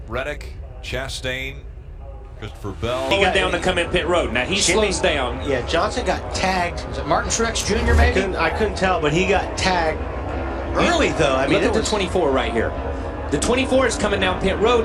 Reddick, Chastain, Christopher Bell. He got down to come in pit road. Now he slows down. Yeah, Johnson got tagged. Was it Martin Truex Jr. maybe? I couldn't tell, but he got tagged early though. I mean, look at the 24 right here. The 24 is coming down pit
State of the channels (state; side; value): identical; both; correlation 1.00